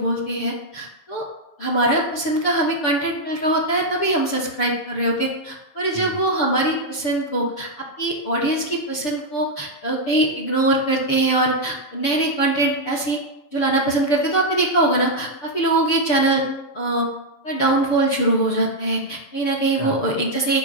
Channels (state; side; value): late; right; 6.8 ms